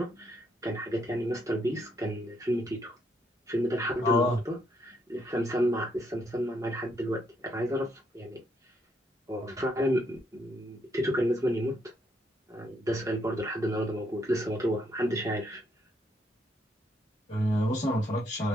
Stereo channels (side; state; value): both; normal; correlation 0.74